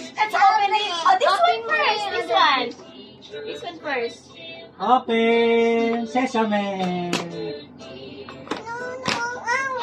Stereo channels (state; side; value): identical; both; correlation 1.00